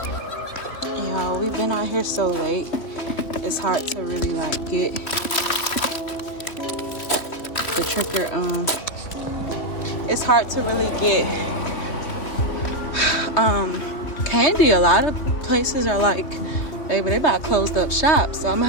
Y'all, we've been out here so late. It's hard to really like get the tricker. It's hard to really get candy. A lot of places are like, baby, they about closed up shop. So I'm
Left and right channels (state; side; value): late; right; 3.0 ms